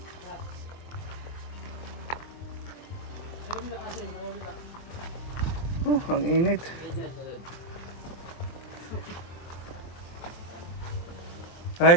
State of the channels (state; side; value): late; right; 23 ms